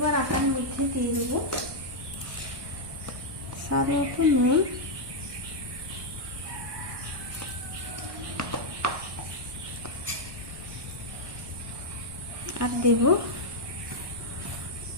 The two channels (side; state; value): left; late; 1.2 ms